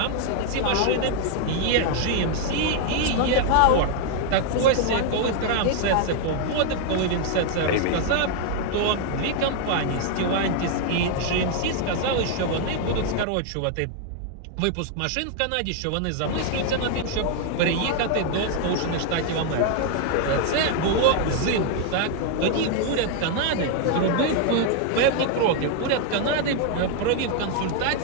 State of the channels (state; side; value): different; both; correlation 0.00